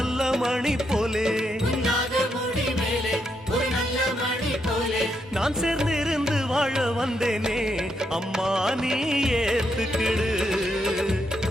மணி போலே உன்னாக முடி மேலே ஒரு நல்ல மணி போலே நான் சேர்ந்து இருந்து வாழ வந்தேனே அம்மா நீ ஏத்துக்கிடு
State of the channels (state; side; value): normal; both; correlation 0.79